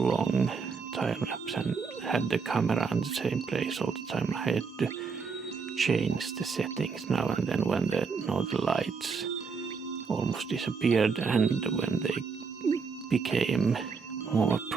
time lapse and had the camera in the same place all the time, I had to change the settings now and then when the Northern Lights almost disappeared and when they became more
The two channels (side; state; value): left; quieter; 5.2 dB